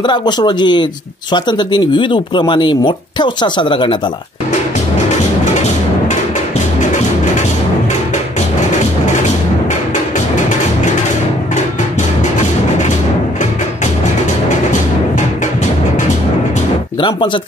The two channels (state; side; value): normal; both; correlation 0.62